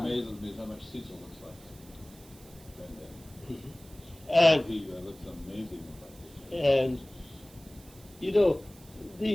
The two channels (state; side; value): noise; right; hiss, 23 dB below the sound